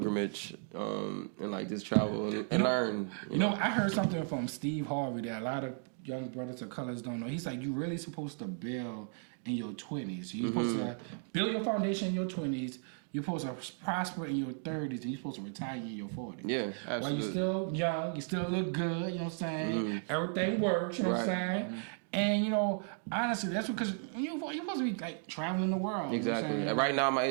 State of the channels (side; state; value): left; silent; 55 dB below the other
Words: and like just travel and learn. You know, I heard something from Steve Harvey that a lot of young brothers of colors don't know. He's like, you're really supposed to build in your 20s. You're supposed to build your foundation in your 20s. You're supposed to prosper in your 30s, and you're supposed to retire in your 40s. Yeah, Absolutely. While you're still young, you still look good, you know what I'm saying? Everything works, you know what I'm saying? And, honestly, that's because you're supposed to be, like, traveling the world. exactly. You know what I'm Right now, at my